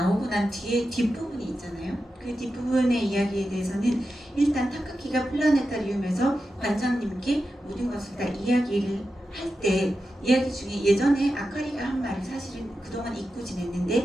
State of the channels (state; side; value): normal; both; correlation 0.90